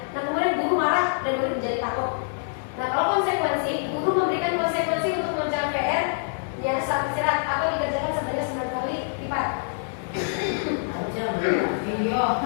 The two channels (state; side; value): silent; right; digital silence